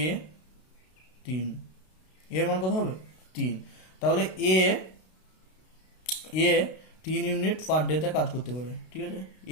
এ 3, এর মান কত হবে 3। তাহলে এ এ 3 ইউনিট পার ডেতে কাজ করতে পারে, ঠিক আছে।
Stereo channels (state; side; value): late; right; 32 ms